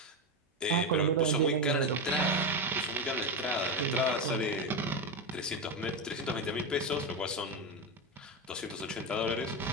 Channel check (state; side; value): normal; both; correlation 0.13